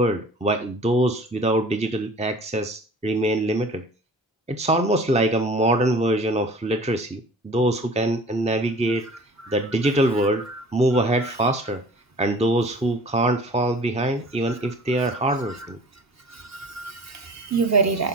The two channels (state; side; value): normal; both; correlation 0.45